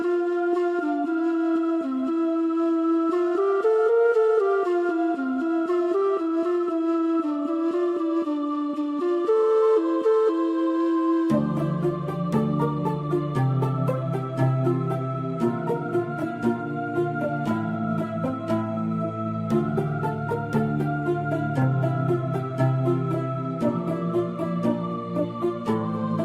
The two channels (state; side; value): identical; both; correlation 1.00